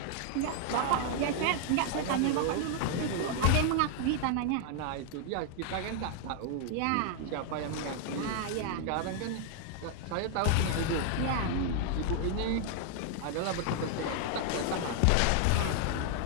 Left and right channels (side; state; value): both; different; correlation 0.00